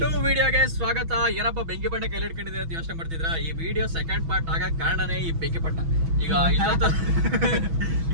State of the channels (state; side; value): late; left; 6.1 ms